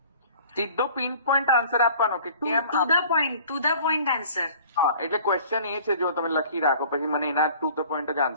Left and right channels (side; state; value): both; inverted; correlation -0.49